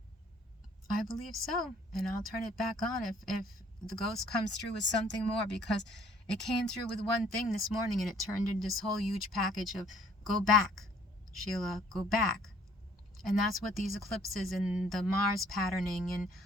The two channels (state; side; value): normal; both; correlation 0.59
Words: I believe so. And I'll turn it back on if the ghost comes through with something more, because it came through with one thing this morning and it turned into this whole huge package of go back, Sheila, go back. And that's what these eclipses and the Mars patterning and